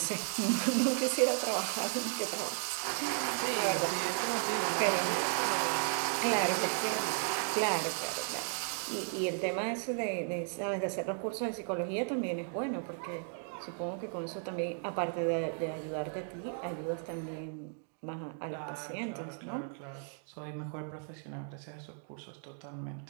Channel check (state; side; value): silent; left; 54 dB below the other